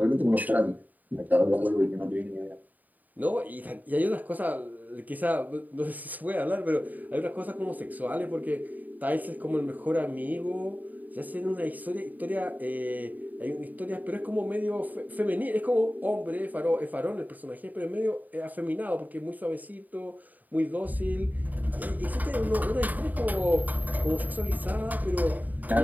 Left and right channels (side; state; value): left; late; 0.082 ms